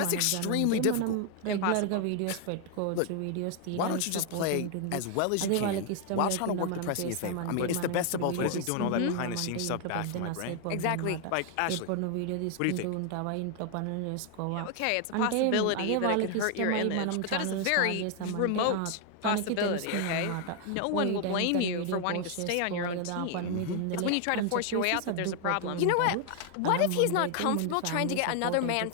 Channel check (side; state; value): both; different; correlation 0.00